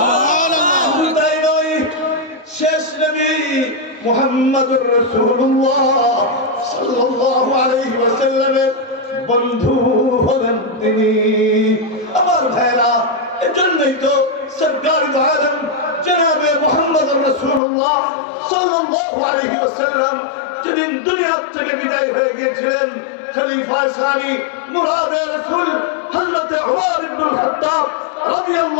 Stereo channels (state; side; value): drops out; right; at 17.6 s